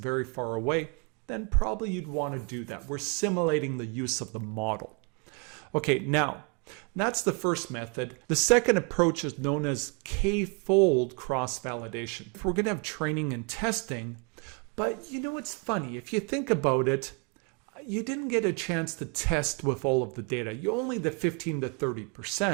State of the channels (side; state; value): left; quieter; 34.0 dB